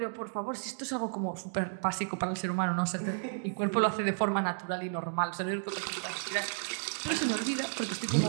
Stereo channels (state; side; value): silent; left; digital silence